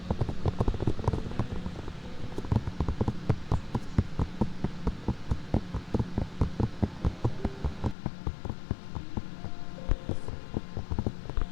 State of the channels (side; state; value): right; drops out; at 8.0 s